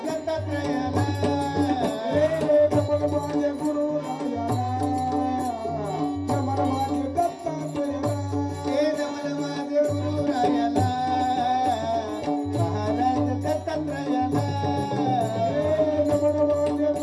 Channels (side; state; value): both; identical; correlation 1.00